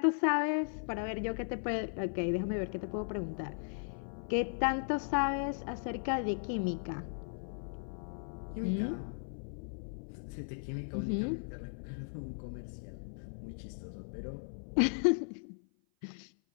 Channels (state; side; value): silent; right; 53 dB below the other